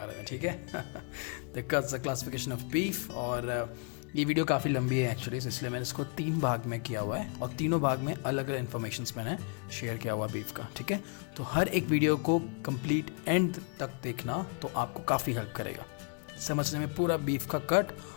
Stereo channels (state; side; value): quieter; right; 38.3 dB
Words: में। ठीक है द क्लासिफिकेशन ऑफ बीफ। और ये वीडियो काफ़ी लंबी है एक्चुअली, इसलिए मैंने इसको 3 भाग में किया हुआ है और तीनों भाग में अलग अलग इन्फॉर्मेशन मैंने शेयर किया हुआ बीफ का। ठीक है, तो हर एक वीडियो को कंप्लीट एंड तक देखना तो आपको काफ़ी हेल्प करेगा समझने में पूरा बीफ का कट,